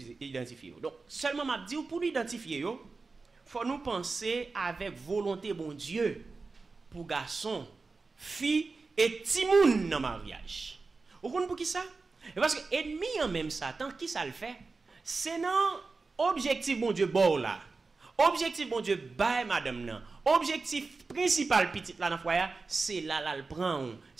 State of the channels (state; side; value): quieter; left; 4.1 dB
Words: Donc, seulement m'a dit pour nous identifier, il faut nous penser avec volonté bon Dieu pour garçon, fille et timoun dans le mariage. Vous comprenez pour qui ça? Parce que ennemi en même Satan, qui ça le fait? C'est non objectif bon Dieu bon là. Objectif bon Dieu bail madame nan. Objectif principal petite là dans foyer, c'est là le prend.